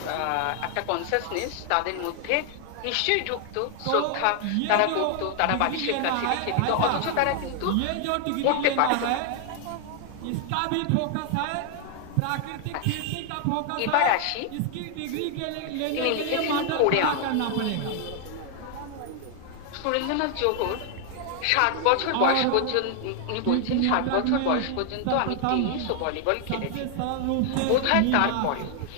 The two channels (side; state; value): both; different; correlation 0.00